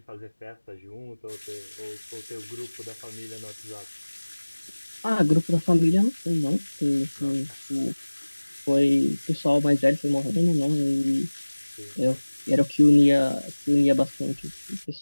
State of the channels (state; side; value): inverted; both; correlation -1.00